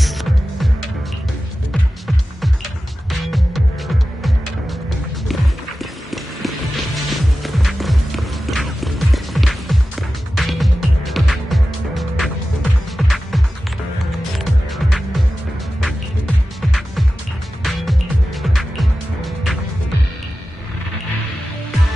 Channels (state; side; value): normal; both; correlation 0.94